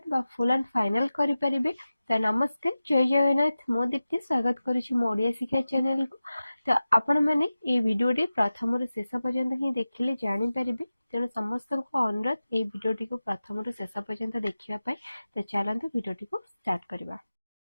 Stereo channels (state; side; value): inverted; both; correlation -0.95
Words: बा फुल एंड फाइनल करि परिबे। तो नमस्कार, जय जगन्नाथ। मो दीप्ति स्वागत करुछि मो ओडिया शिक्षा चैनल को। तो आपण माने ए वीडियोटी प्रथम रु शेष पर्यंत ही देखिले जानि परिबे। तेणु समस्त को अनुरोध ए वीडियोटी को प्रथम रु शेष पर्यंत देखिबा पई। तो चलंतु वीडियोटी को स्टार्ट करबा।